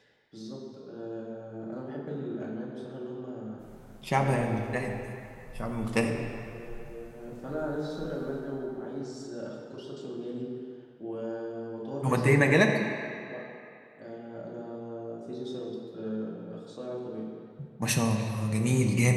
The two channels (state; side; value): identical; both; correlation 1.00